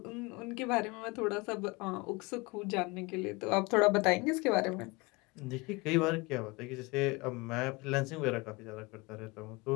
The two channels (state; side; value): quieter; right; 25.4 dB